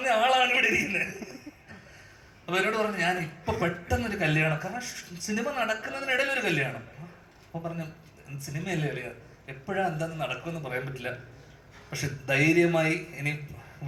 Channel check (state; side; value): identical; both; correlation 1.00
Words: ആളാണ് ഇവിടെ ഇരിക്കുന്നത്. അപ്പൊ എന്നോട് പറഞ്ഞു, ഞാൻ ഇപ്പൊ പെട്ടെന്നൊരു കല്യാണം, കാരണം സിനിമ നടക്കുന്നതിനിടയിൽ ഒരു കല്യാണം. അപ്പൊ പറഞ്ഞു, സിനിമയല്ലേ അളിയ, എപ്പോഴാ എന്താന്ന് നടക്കുമെന്ന് പറയാൻ പറ്റില്ല, പക്ഷെ ധൈര്യമായി ഇനി